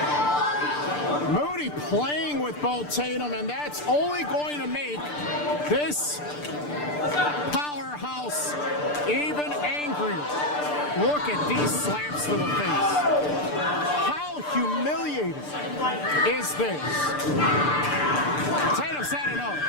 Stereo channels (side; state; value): right; late; 6.8 ms